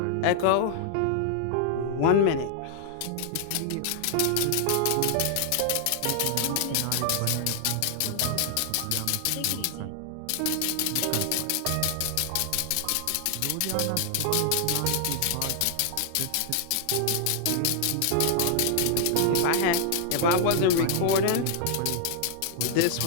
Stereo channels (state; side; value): different; both; correlation 0.00